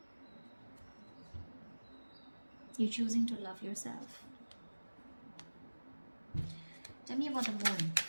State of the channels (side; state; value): both; inverted; correlation -1.00